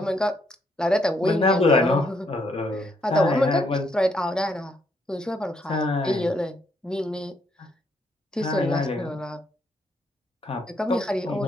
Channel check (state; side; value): normal; both; correlation 0.73